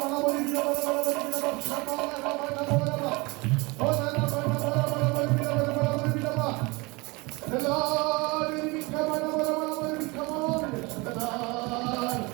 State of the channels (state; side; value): quieter; left; 25.7 dB